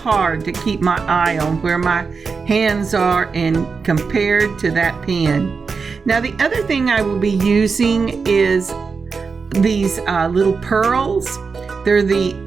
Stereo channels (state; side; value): quieter; left; 5.0 dB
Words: to keep my eye on where my hands are and compared to that pin. Now the other thing I will be using is these little pearls. They're the